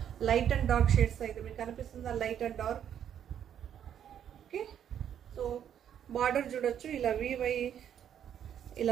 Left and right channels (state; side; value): quieter; left; 9.4 dB